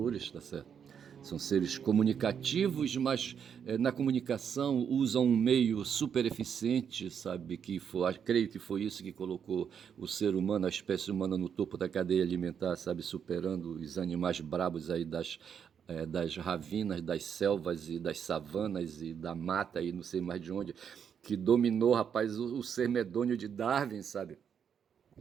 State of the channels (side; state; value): left; quieter; 7.7 dB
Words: tá certo? São seres comunicativos, mas na comunicação usam um meio super eficiente, sabe? Creio que foi isso que colocou o ser humano, a espécie humana, no topo da cadeia alimentar, sabe? Superando os animais brabos aí das ravinas, das selvas e das savanas e da mata e não sei mais de onde, que dominou, rapaz, o ser medonho de Darwin, sabe?